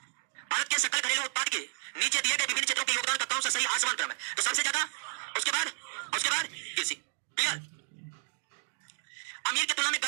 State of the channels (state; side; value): silent; left; digital silence